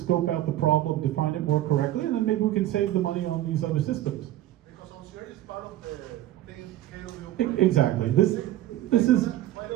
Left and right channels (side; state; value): left; quieter; 14.0 dB